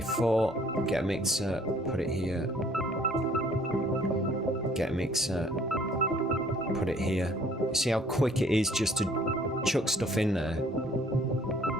get a mixer, put it here. Get a mixer, put it here. You see how quick it is just to chuck stuff in there.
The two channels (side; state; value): both; normal; correlation 0.58